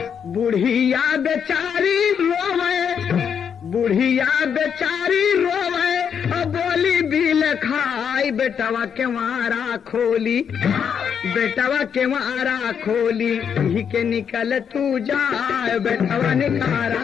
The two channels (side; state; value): right; quieter; 7.5 dB